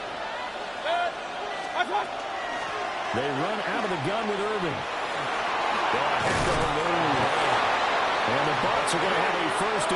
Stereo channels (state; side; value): identical; both; correlation 1.00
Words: They run out of the gun with Irving. And the Bucs are going to have a 1st